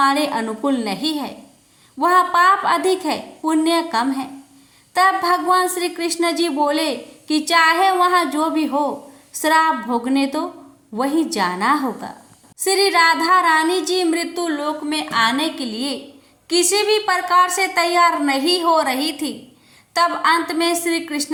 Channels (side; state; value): both; identical; correlation 1.00